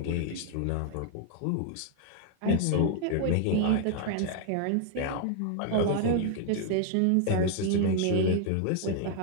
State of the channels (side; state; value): both; different; correlation 0.00